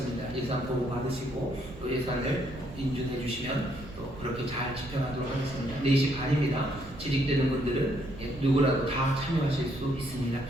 예산 보고 받으시고 또 예산을 인준해 주시면 또 그렇게 잘 집행하도록 하겠습니다. 4시 반입니다. 재직되는 분들은 누구라도 다 참여하실 수 있습니다.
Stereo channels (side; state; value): right; noise; rumble, 15 dB below the sound